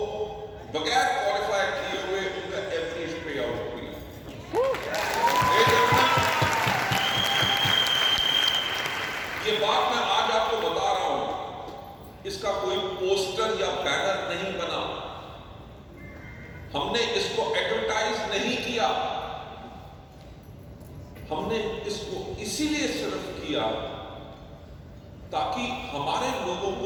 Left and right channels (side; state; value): both; identical; correlation 1.00